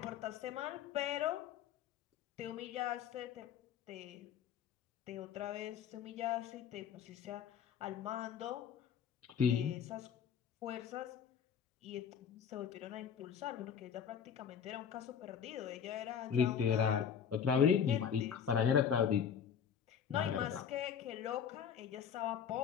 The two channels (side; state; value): right; quieter; 7.8 dB